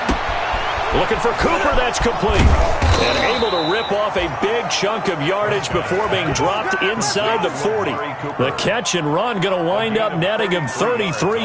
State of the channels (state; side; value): identical; both; correlation 1.00